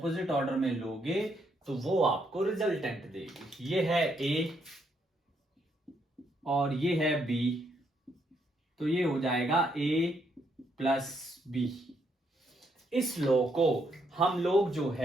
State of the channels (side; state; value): both; normal; correlation 0.75